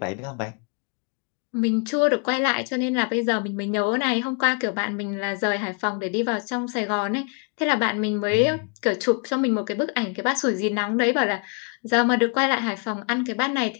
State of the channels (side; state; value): right; quieter; 37.7 dB